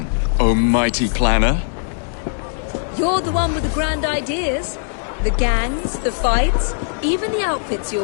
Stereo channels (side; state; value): right; silent; 66 dB below the other